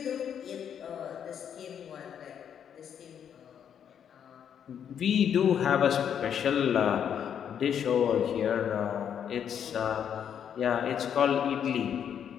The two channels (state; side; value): quieter; right; 8.6 dB